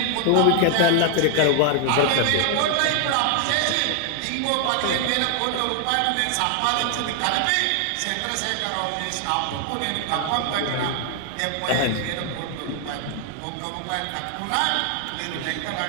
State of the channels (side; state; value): both; different; correlation 0.00